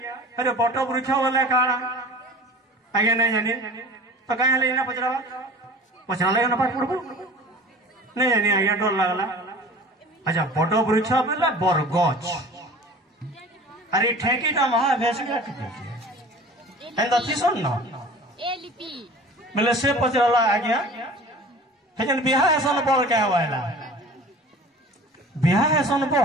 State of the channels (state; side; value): normal; both; correlation 0.42